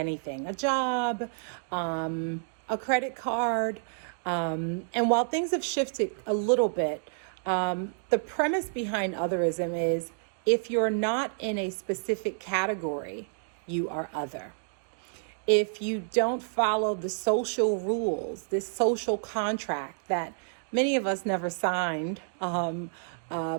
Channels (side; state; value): left; silent; digital silence